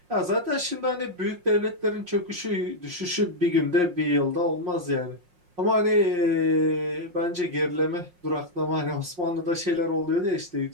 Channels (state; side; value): late; left; 5.6 ms